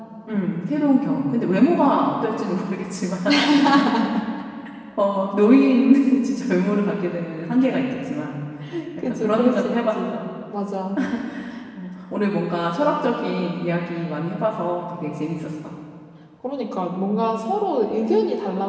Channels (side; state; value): both; identical; correlation 1.00